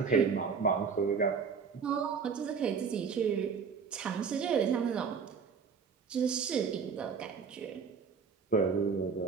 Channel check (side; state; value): left; quieter; 5.9 dB